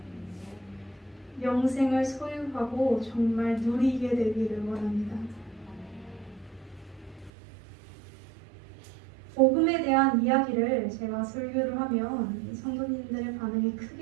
영생을 소유하고 정말 누리게 되기를 원합니다. 복음에 대한 이야기를 제가 설교를 하면 성도님들의 반응이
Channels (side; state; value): left; drops out; at 7.3 s